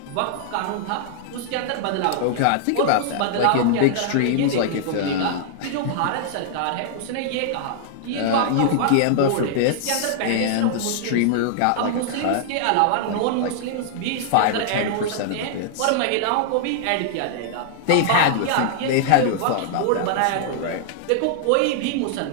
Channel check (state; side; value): different; both; correlation -0.01